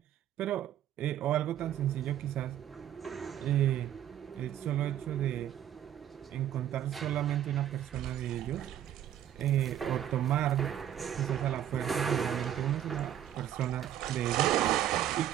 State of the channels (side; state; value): left; quieter; 11.0 dB